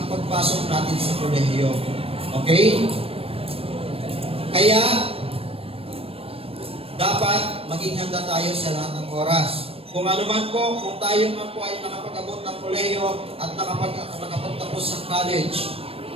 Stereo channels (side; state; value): left; late; 0.28 ms